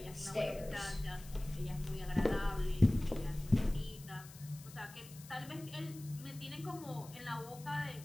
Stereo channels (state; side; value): noise; left; hiss, 18 dB below the sound